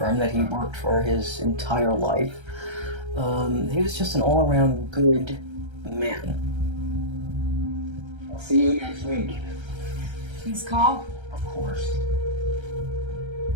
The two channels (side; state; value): left; late; 1.3 ms